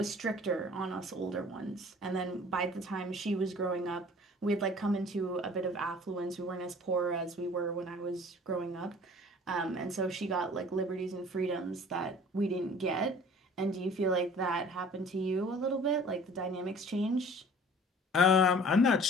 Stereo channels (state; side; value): normal; both; correlation 0.48